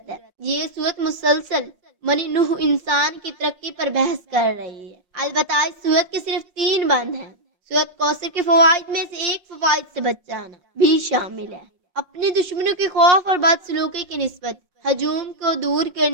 ہے۔ یہ سورت مسلسل بنی نوح انسان کی ترقی پر بحث کر رہی ہے۔ البتہ اس سورت کے صرف 3 بند ہیں۔ سورت کوثر کے فوائد میں سے ایک فوائد سے بچ جانا بھی شامل ہے۔ اپنے دشمنوں کے خوف اور بدسلوکی کی نسبت ہجوم کو دور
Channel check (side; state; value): left; late; 5.6 ms